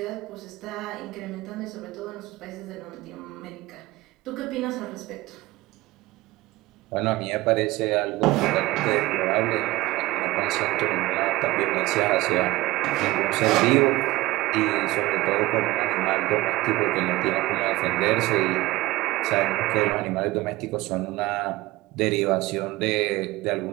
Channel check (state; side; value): quieter; left; 18.9 dB